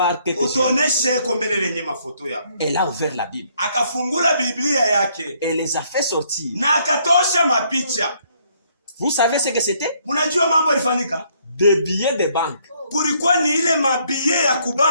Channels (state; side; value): inverted; both; correlation -0.68